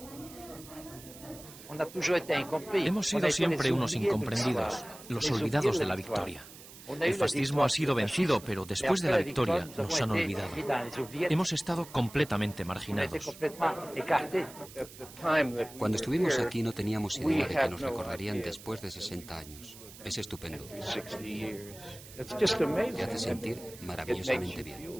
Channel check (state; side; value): noise; right; hiss, 17 dB below the sound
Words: Hemos sido siempre unos incomprendidos, los olvidados de la victoria. El fascismo ha sido vencido, pero después de la victoria nos han olvidado. Hemos estado completamente marginados. Cuando estuvimos aquí no teníamos idea de que nos recordarían después de 60 años. Es estupendo. Te hace sentir maravillosamente bien.